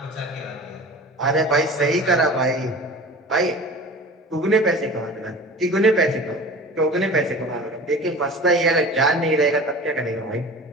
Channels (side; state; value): both; normal; correlation 0.38